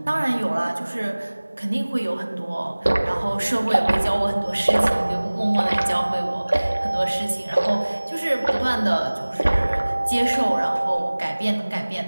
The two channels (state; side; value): inverted; both; correlation -1.00